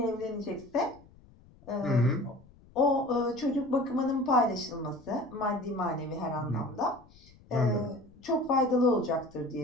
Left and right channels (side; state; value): left; noise; rumble, 25 dB below the sound